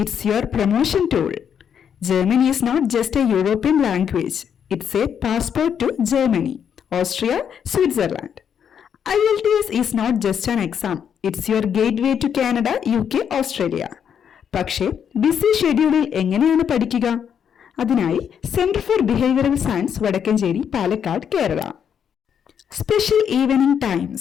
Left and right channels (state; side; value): quieter; right; 8.1 dB